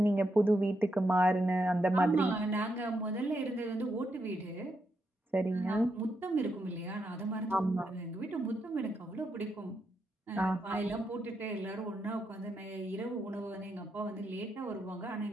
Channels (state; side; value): normal; both; correlation 0.82